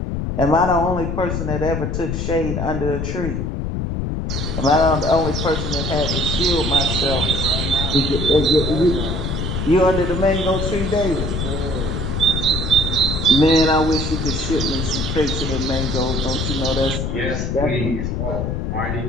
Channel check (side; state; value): left; noise; rumble, 2 dB below the sound